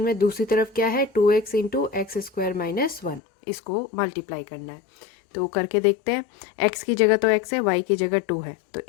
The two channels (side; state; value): right; drops out; at 3.2 s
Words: में दूसरी तरफ क्या है, 2x into x square minus 1, इसको मल्टीप्लाई करना है। तो करके देखते हैं, x की जगह तो x है, y की जगह 2 है, तो